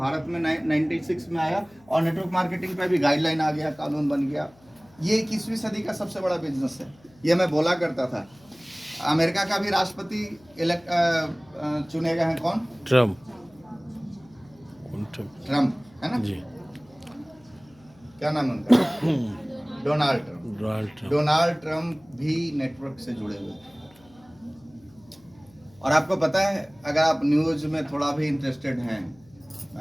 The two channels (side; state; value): left; noise; hum, 28 dB below the sound